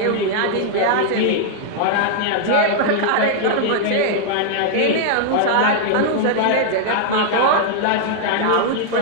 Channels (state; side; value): different; both; correlation -0.01